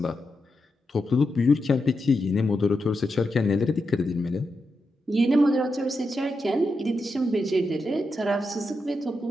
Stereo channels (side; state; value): both; normal; correlation 0.87